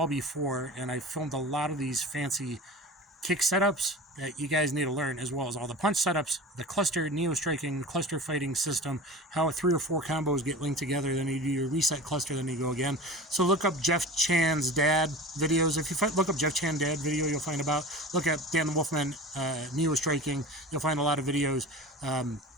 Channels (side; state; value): both; normal; correlation 0.35